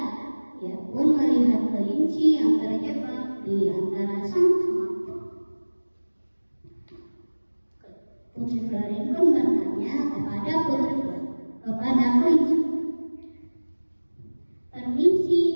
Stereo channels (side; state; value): both; inverted; correlation -1.00